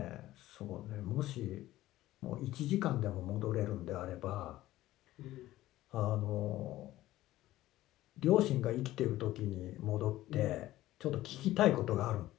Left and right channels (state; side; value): quieter; right; 15.6 dB